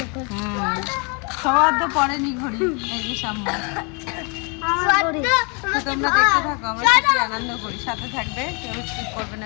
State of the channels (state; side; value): quieter; right; 34.1 dB